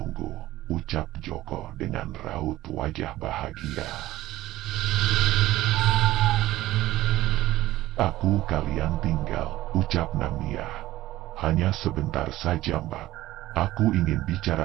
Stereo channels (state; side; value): quieter; left; 15.8 dB